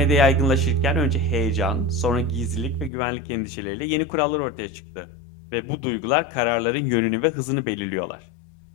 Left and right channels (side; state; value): right; drops out; at 2.9 s